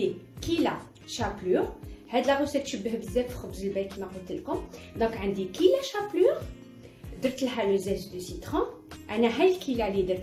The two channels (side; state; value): both; identical; correlation 1.00